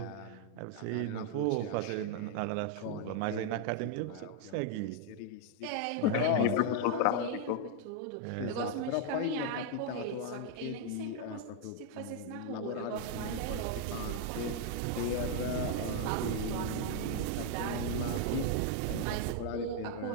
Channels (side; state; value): both; different; correlation 0.00